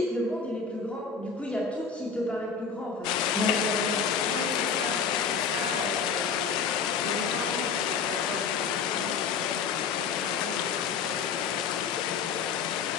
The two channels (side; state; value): right; quieter; 6.0 dB